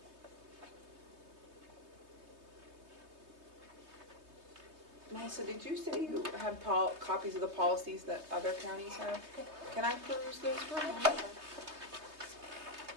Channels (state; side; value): late; left; 3.2 ms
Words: Melissa, did you say you have copies of the policies that other counties have? Can I peruse those for a moment?